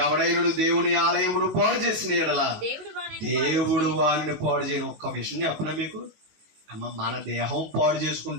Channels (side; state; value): left; late; 19 ms